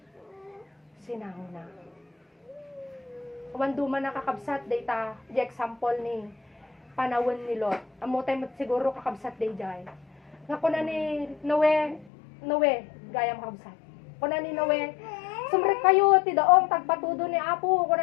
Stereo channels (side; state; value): right; drops out; at 12.1 s